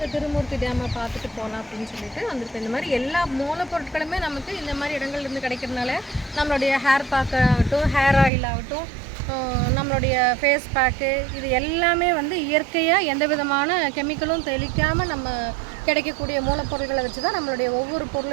திருமூர்த்தி டேமை பார்த்துட்டு போகலாம் அப்படின்னு சொல்லிட்டு வந்திருக்கோம். இந்த மாதிரி எல்லா மூலப்பொருட்களுமே நமக்கு இந்த மாதிரி இடங்கள்லேருந்து கிடைக்கிறதுனால நம்மளுடைய ஹேர் பேக் ஆகட்டும், ஹேர் ஆயில் ஆகட்டும், நம்மளுடைய ஃபேஸ் பேக்கு, இது எல்லாமே வந்து இயற்கையாக எந்த விதமான கெமிக்கலும் தெளிக்காமல் நம்ம கிடைக்கக்கூடிய மூலப்பொருட்களை வச்சு தான் நம்மளுடைய ஒவ்வொரு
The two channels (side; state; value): left; drops out; at 8.3 s